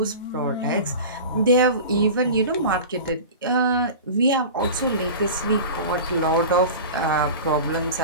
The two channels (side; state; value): both; inverted; correlation -0.33